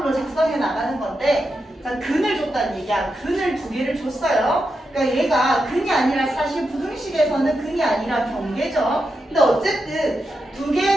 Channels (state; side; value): normal; both; correlation 0.87